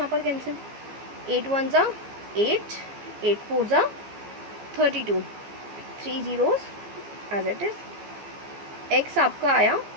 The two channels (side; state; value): left; late; 15 ms